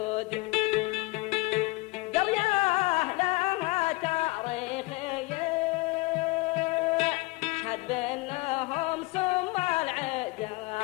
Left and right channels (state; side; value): quieter; right; 23.6 dB